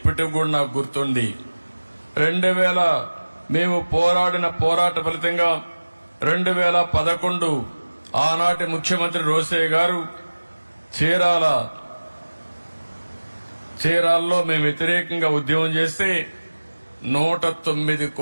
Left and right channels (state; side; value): inverted; both; correlation -1.00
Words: కూడా నాకు గుర్తుంది. 2000 మేము పోరాడిన పోరాట ఫలితంగా 2011 ఆనాటి ముఖ్యమంత్రి రోసయ్య గారు చీరాల్లో మేము వ్యతిరేకంగా ఉద్యమం చేస్తే 109